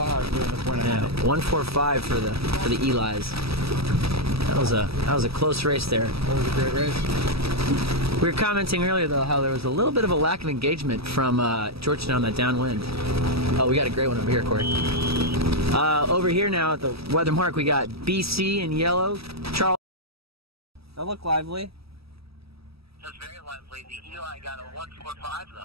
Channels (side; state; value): left; late; 0.77 ms